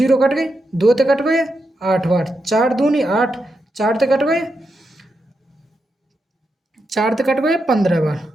कट गई, 2 ते कट गए 8 बार, 4 दूनी 8, 4 ते कट गए 4 ते कट गए 15 बार,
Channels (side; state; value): both; normal; correlation 0.85